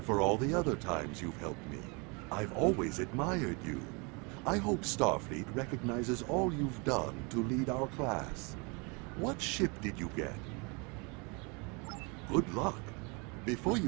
for all the other times you've helped me. I've always admired you. I hope Starfleet recognizes all you've done to lead our class. What ship did you get? Good luck. Before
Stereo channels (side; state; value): left; quieter; 30.7 dB